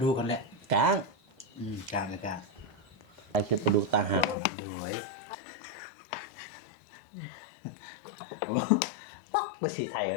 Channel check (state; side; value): drops out; right; at 4.4 s